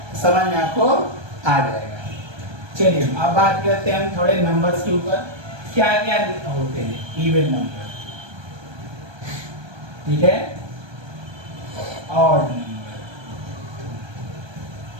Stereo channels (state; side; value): late; left; 1.2 ms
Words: समझ में आपको आ जाएगा। चलिए अब बात करते हैं हम थोड़े नंबर्स के ऊपर, क्या क्या होते हैं इवन नंबर, ठीक है, ऑड नंबर,